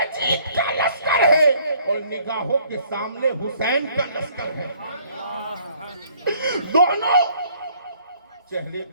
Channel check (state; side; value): inverted; both; correlation -0.60